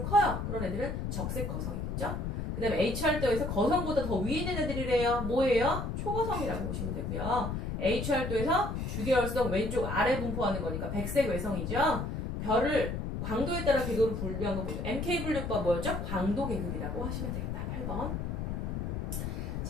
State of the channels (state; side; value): noise; left; rumble, 3 dB below the sound